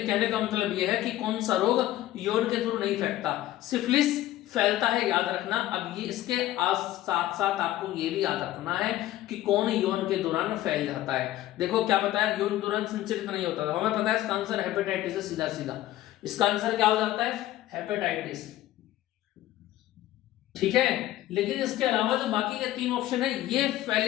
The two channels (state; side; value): quieter; right; 14.6 dB